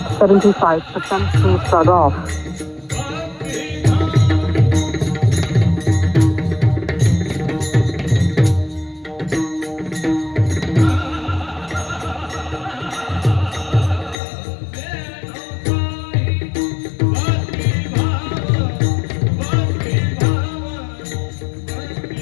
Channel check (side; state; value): right; drops out; at 14.2 s